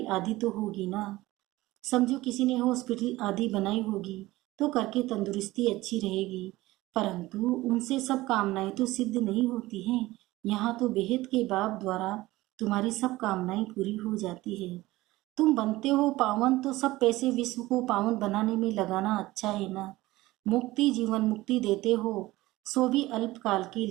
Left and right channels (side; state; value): left; quieter; 18.4 dB